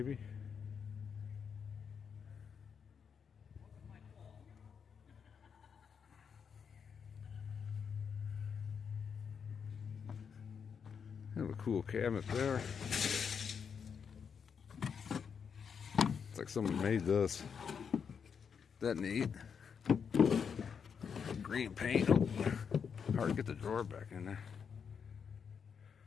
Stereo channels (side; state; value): right; quieter; 6.7 dB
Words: Have a cool cabinet there. It's like someone made this. That neat. Green paint. Oh, hard to get the drawer back in there.